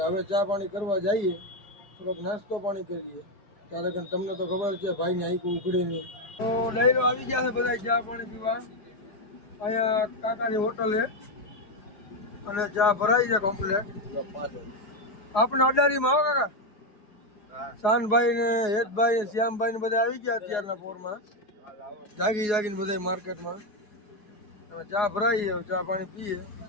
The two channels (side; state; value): right; late; 4.8 ms